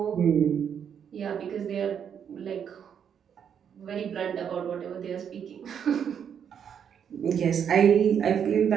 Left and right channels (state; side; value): quieter; left; 8.1 dB